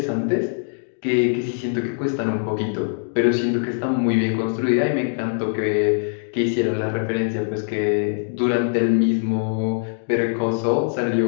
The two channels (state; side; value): silent; right; digital silence